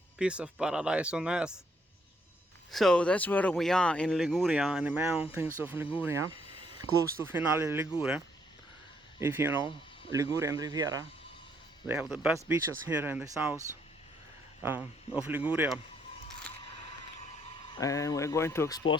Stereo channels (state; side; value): normal; both; correlation 0.71